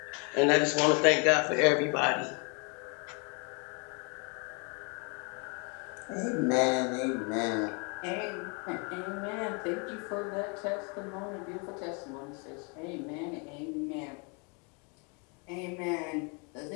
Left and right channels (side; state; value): right; quieter; 34.0 dB